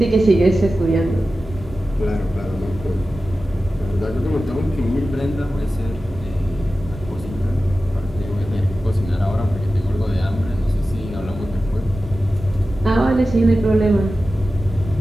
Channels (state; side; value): normal; both; correlation 0.94